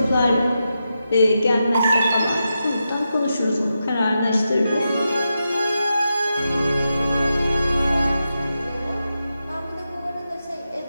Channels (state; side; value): inverted; both; correlation -0.88